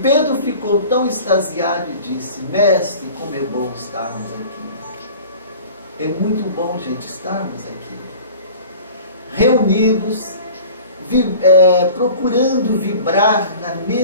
ficou tão extasiado e disse: mestre, como é bom estarmos aqui. É muito bom, gente, estarmos aqui, reunidos, procurando vibrar na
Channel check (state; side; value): inverted; both; correlation -0.43